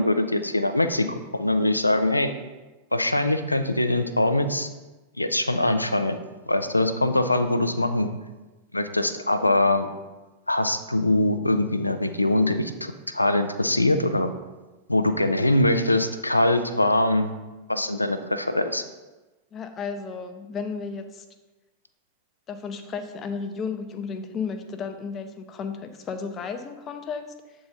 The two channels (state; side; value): inverted; both; correlation -0.77